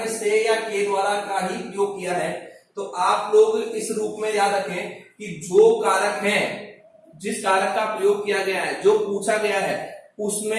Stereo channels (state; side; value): identical; both; correlation 1.00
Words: से या के द्वारा का ही प्रयोग किया है। तो आप लोग इस रूप में याद रखें कि जो कारक है, जिस कारक का प्रयोग किया गया है, जो पूछा गया है,